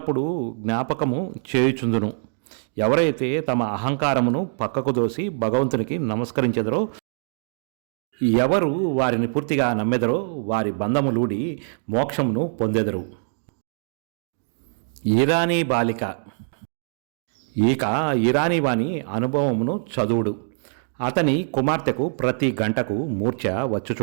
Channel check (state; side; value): silent; left; digital silence